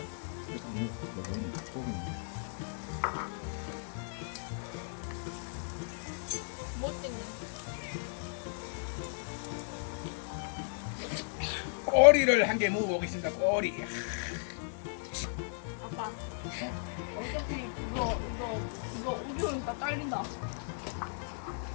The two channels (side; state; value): right; silent; digital silence